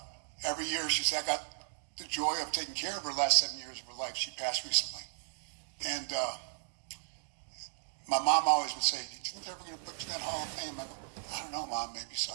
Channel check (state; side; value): silent; left; digital silence